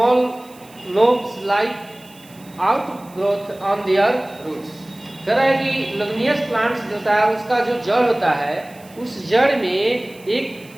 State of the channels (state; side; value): noise; right; hiss, 25 dB below the sound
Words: lobes like outgrowth on their roots. कह रहा है कि लेगुमिनियस प्लांट्स जो होता है उसका जो जड़ होता है, उस जड़ में एक